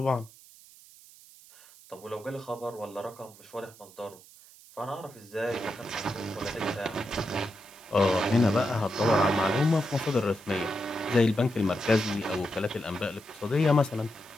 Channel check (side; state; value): right; noise; hiss, 22 dB below the sound